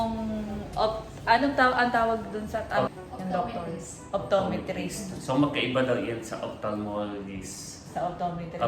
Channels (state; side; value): identical; both; correlation 1.00